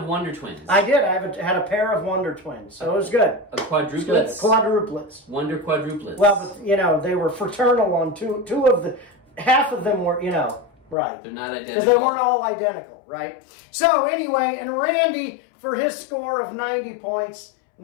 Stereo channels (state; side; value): drops out; right; at 11.0 s